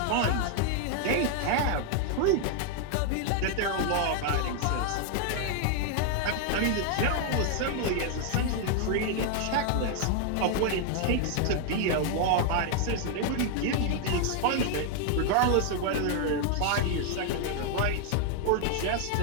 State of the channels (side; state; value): both; different; correlation 0.00